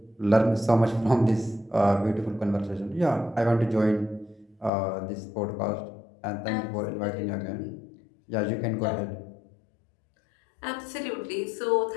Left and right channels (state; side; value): drops out; right; at 4.7 s